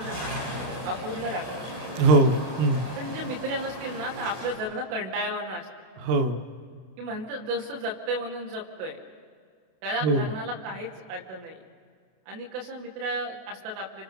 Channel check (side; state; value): left; late; 32 ms